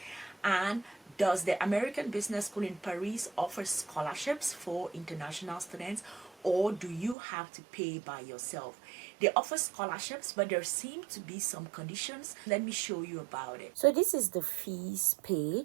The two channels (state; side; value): drops out; left; at 7.2 s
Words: And does the American Business School in Paris offer scholarships for international students, or do you have to pay by yourself? They offer scholarships, but there seem to be some conditions. Let me show you about it. So this is the fees